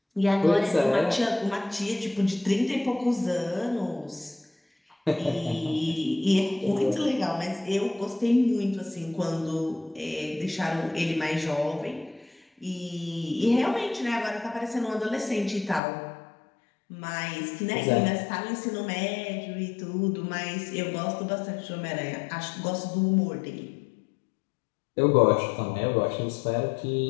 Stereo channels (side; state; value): right; drops out; at 15.8 s